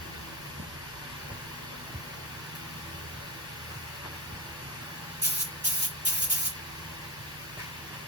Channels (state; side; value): normal; both; correlation 0.19